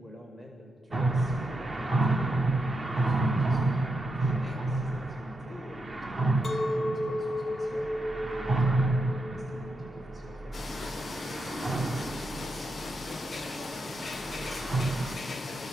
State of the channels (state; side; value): normal; both; correlation 0.84